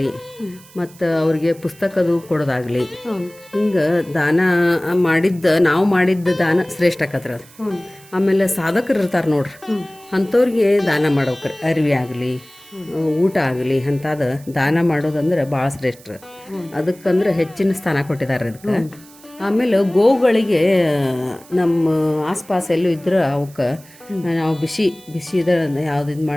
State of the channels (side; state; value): right; noise; hiss, 24 dB below the sound